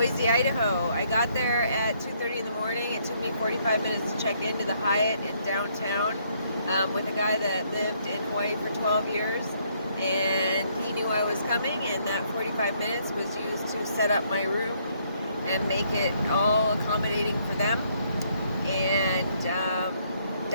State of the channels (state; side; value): inverted; both; correlation -0.69